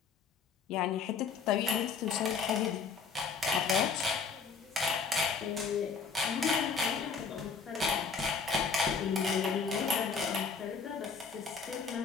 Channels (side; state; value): right; quieter; 5.5 dB